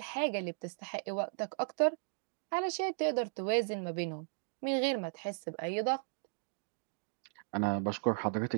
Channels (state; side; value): silent; left; digital silence